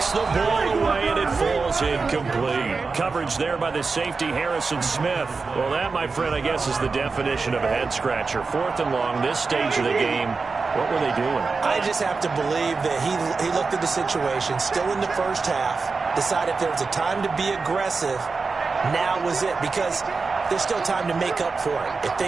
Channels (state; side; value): quieter; left; 4.4 dB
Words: the ball away, and it falls incomplete. Coverage there by the safety, Harrison Smith. Well, that, my friend, I guess is the definition of a head-scratcher. 4th and long, this stage of the game. What were they doing? I just have to believe that he looked at the situation, still in the first half, decided if there was a time to be aggressive, now was it. Because there's still time to make up for it if